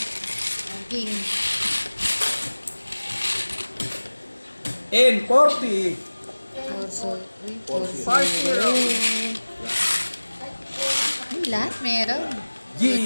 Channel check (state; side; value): inverted; both; correlation -1.00